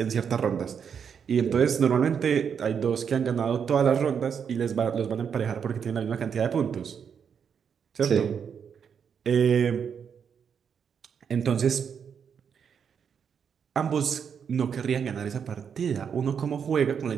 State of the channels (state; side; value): quieter; left; 7.2 dB